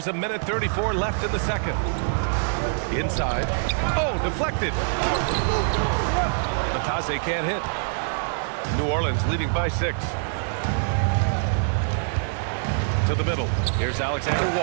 a minute 34 left in the second. Inside. Oh, deflected. Batase can't hit. New Orleans leading by 6. To the middle. Here's Alexander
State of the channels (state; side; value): silent; left; digital silence